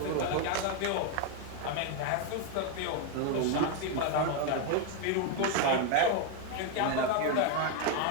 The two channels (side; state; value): both; different; correlation 0.01